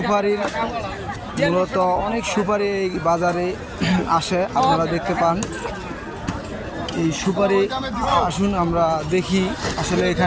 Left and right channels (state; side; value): identical; both; correlation 1.00